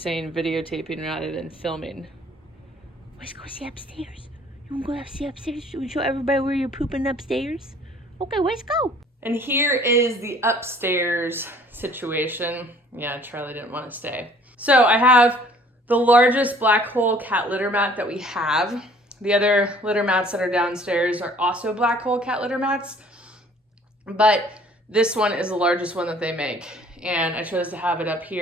videotaping rather than filming. Let's go see upstairs. You want to go see upstairs? You show everybody where you're pooping upstairs? Okay, let's go. And here is the upstairs situation. Yeah, Charlie didn't want to stay. So I have the largest black hole cat litter mat that we have. The other litter mats that are downstairs are also black hole cat litter mats, but this one is the largest one that they make. And I chose to have it up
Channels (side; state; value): both; normal; correlation 0.55